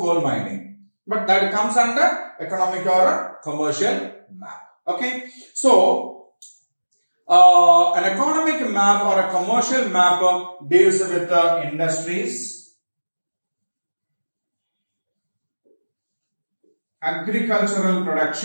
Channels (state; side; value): inverted; both; correlation -1.00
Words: mining. But that comes under economic or a commercial map. Okay, so an economic map or a commercial map deals with industries, agricultural